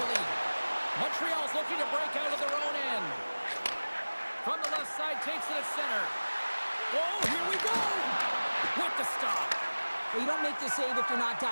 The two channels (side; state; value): both; inverted; correlation -1.00